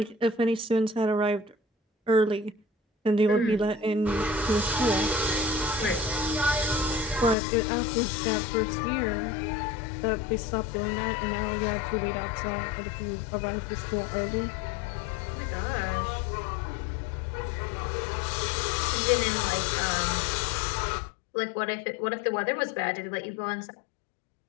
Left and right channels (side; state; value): right; drops out; at 7.4 s